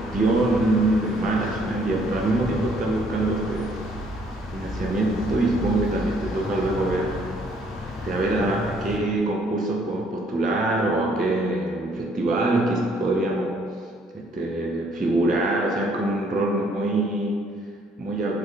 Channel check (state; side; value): normal; both; correlation 0.64